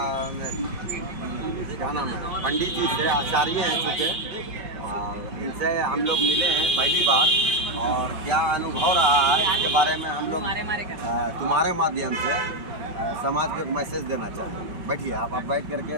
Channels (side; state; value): left; late; 5.4 ms